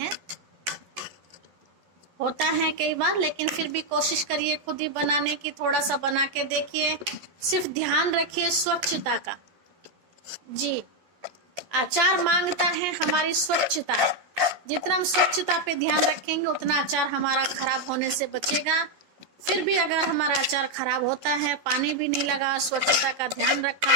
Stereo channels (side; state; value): left; late; 12 ms